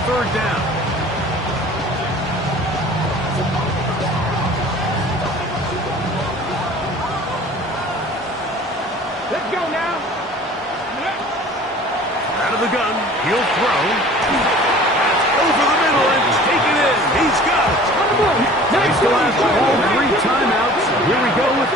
third down. Let's go now. Out of the gun, he'll throw. That's over the middle and taken in. He's got it. They still have all 3 timeouts. Here we go with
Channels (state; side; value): normal; both; correlation 0.46